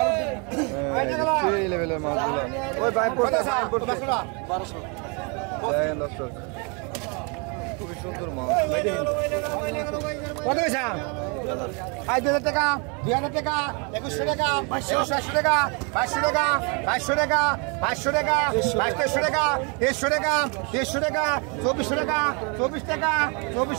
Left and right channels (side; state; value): left; quieter; 33.6 dB